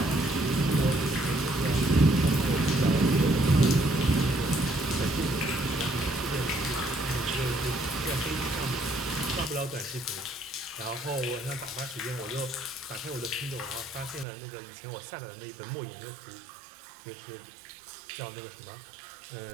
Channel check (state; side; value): drops out; left; at 14.2 s